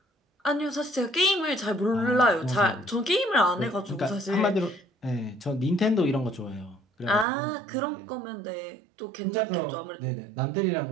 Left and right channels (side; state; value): left; drops out; at 7.2 s